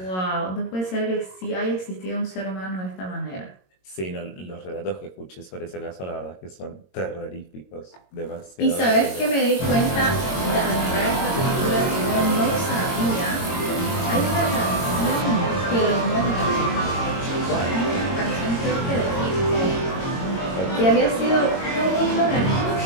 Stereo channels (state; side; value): late; right; 22 ms